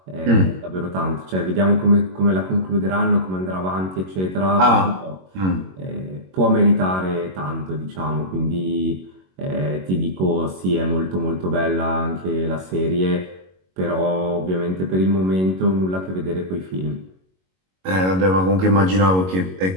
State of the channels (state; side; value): late; left; 21 ms